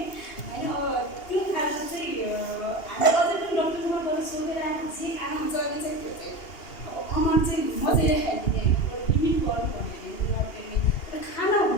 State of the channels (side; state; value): right; late; 2.8 ms